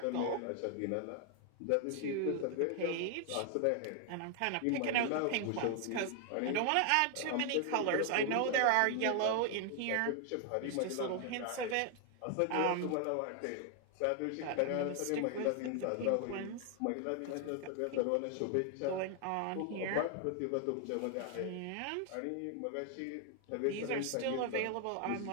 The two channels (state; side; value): different; both; correlation 0.00